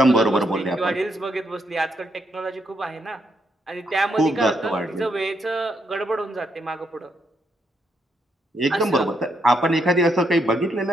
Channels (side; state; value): both; normal; correlation 0.77